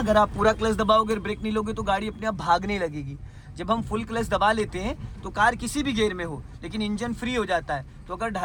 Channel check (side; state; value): both; identical; correlation 1.00